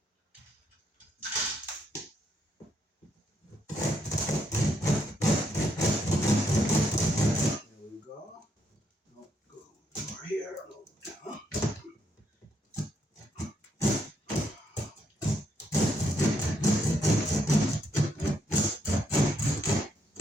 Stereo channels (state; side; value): normal; both; correlation 0.75